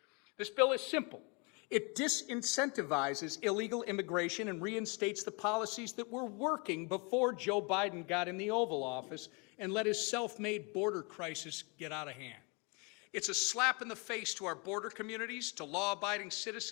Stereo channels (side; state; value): right; quieter; 31.8 dB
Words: This bill is simple. It disincentivizes illegal immigration and reinstates the policies that were working before Joe Biden got in the Oval Office and let his self-made border crisis get out of hand. It's a slap in the face to our border communities, to law-abiding